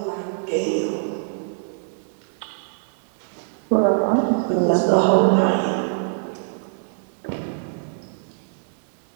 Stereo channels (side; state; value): left; silent; digital silence